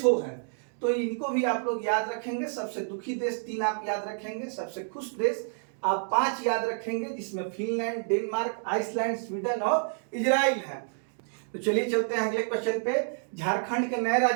है। तो इनको भी आप लोग याद रखेंगे। सबसे दुखी देश 3 आप याद रखेंगे, सबसे खुश देश आप 5 याद रखेंगे, जिसमें फिनलैंड, डेनमार्क, आइसलैंड, स्वीडन और इजराइल है। तो चलिए चलते हैं अगले क्वेश्चन पे। झारखंड के नए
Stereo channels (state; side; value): silent; left; 59 dB below the other